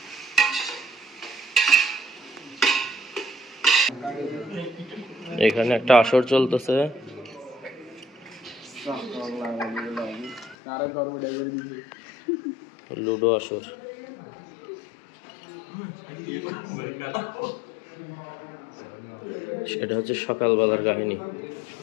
এখানে একটা আসর চলতেছে, লুডো আসর। সেটা হচ্ছে সকালবেলার কাহিনী।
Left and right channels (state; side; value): drops out; right; at 10.6 s